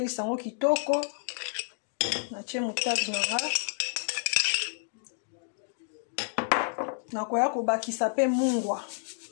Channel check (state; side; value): silent; right; digital silence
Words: yango kitoko. Na tie moutarde nanga. Na koya kobakisa pe mungwa.